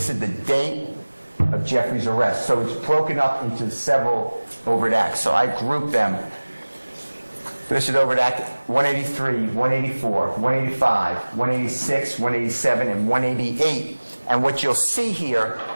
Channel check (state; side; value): inverted; both; correlation -1.00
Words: is the date of Jeffrey's arrest. So it's broken up into several Overt Acts. So I grouped them. This is Overt Act 183, 184, 185, 186, 187, and 188. And what you'll see here